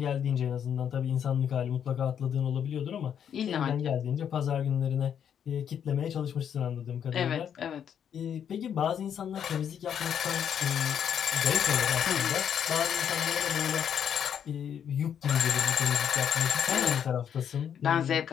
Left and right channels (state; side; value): quieter; right; 8.6 dB